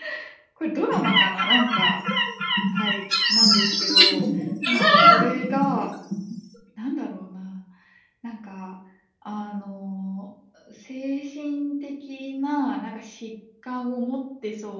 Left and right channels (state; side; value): identical; both; correlation 1.00